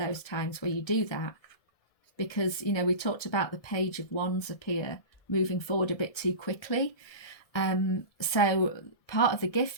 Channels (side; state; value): right; late; 1.7 ms